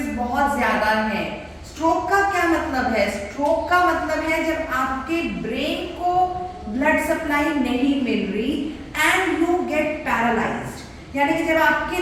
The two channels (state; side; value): identical; both; correlation 1.00